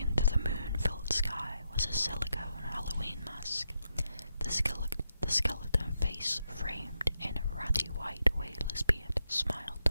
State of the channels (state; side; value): inverted; both; correlation -0.84